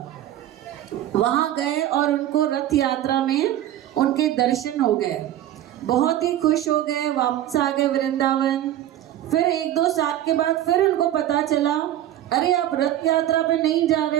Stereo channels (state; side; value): quieter; left; 12.4 dB